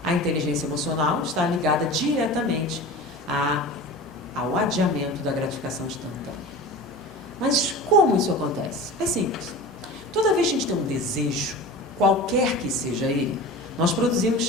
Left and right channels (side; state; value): both; normal; correlation 0.34